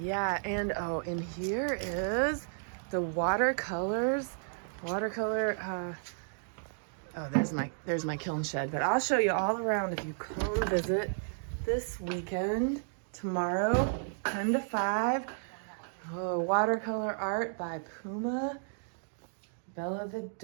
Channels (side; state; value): left; silent; digital silence